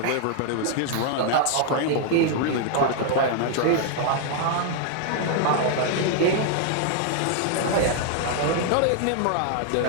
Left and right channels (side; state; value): both; different; correlation 0.00